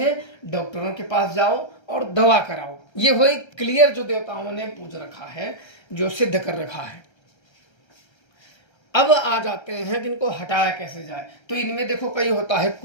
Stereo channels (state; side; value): late; right; 1.3 ms